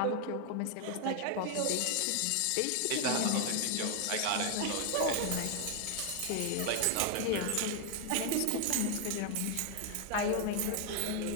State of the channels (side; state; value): both; different; correlation 0.00